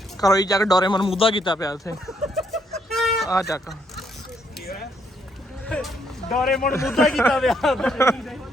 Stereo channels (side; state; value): both; normal; correlation 0.73